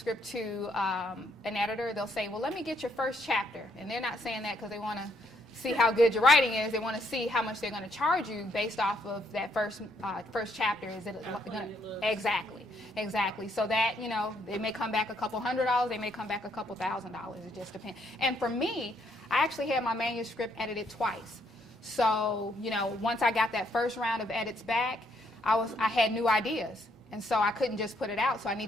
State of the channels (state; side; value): normal; both; correlation 0.72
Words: to an editor, they'll say, well, let me get your first chapter. And they're not saying that because they want to see how good your writing is. They want to see how much they're going to charge you based off of that first chapter. Is it going to? Exactly. So that, it may come back a couple $100s. They may come back a couple $1,000s. It just depends. And for me, I actually had my manuscript edited twice. So, once I got that first round of edits back, I had new ideas. And so I couldn't just put it out, so I